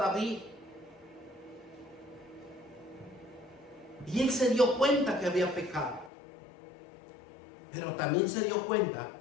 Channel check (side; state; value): right; drops out; at 6.1 s